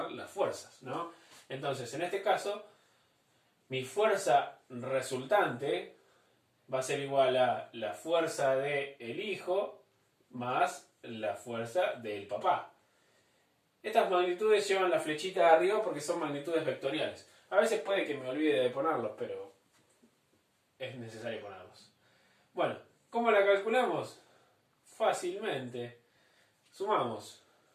las fuerzas, ¿no? Entonces, en este caso, mi fuerza resultante va a ser igual a la fuerza del hijo más la fuerza del papá. Estas magnitudes llevan la flechita de arriba porque son magnitudes vectoriales. A veces puede que me olvide de ponerlos, pero es necesario ponerlos. Bueno, ¿cómo la calculamos? Fácilmente. Sumamos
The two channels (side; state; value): both; identical; correlation 1.00